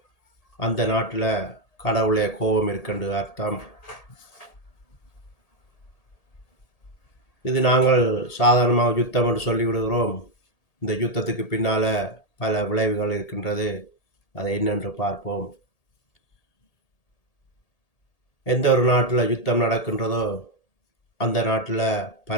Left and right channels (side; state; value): right; late; 1.8 ms